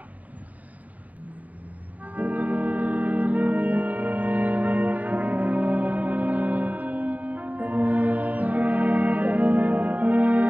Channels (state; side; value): late; left; 0.073 ms